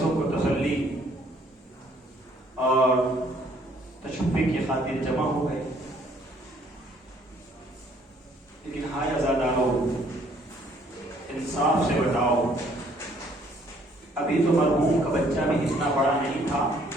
کو تسلی اور تشفی کی خاطر جمع ہو گئے. لیکن ہائے عزادارو، انصاف سے بتاؤ، ابھی تو مرحوم کا بچہ بھی اتنا بڑا نہیں تھا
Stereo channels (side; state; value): both; normal; correlation 0.63